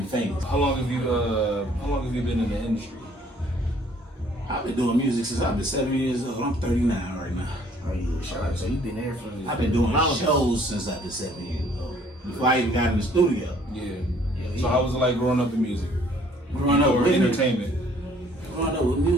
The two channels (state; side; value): normal; both; correlation 0.59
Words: famous. How long have you been in the industry? I've been doing music since I've been 7 years old. I'm 39 right now. Oh yeah, shout out. So you been there for? I've been doing shows since I've been 7 years old. Before I even got in the studio. Yeah. So how was it like growing up in music? Growing up with entertainment. Growing up with